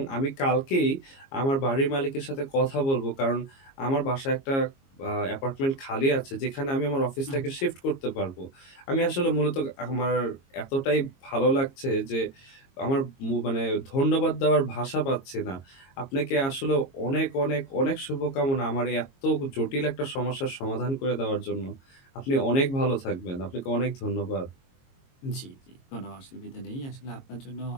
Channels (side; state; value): right; late; 22 ms